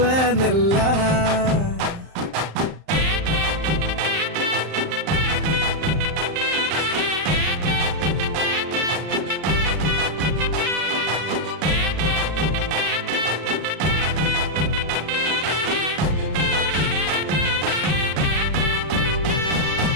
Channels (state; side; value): late; left; 35 ms